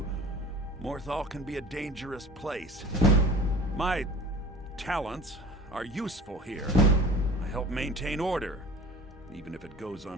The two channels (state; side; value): normal; both; correlation 0.42